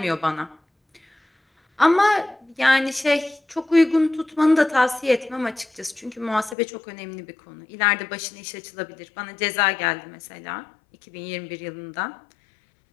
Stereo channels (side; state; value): right; drops out; at 6.6 s